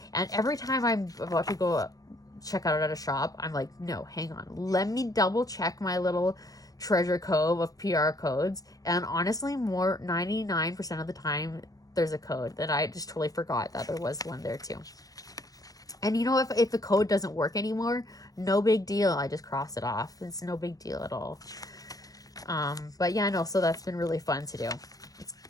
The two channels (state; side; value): late; right; 0.17 ms